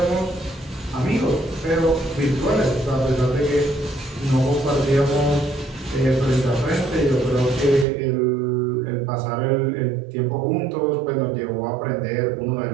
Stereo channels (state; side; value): drops out; left; at 7.9 s